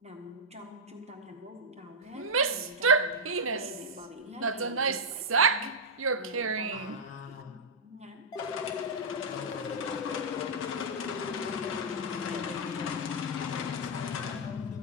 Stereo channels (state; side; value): normal; both; correlation -0.07